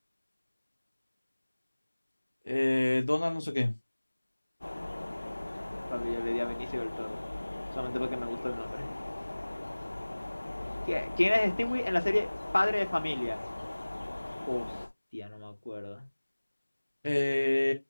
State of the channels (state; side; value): inverted; both; correlation -1.00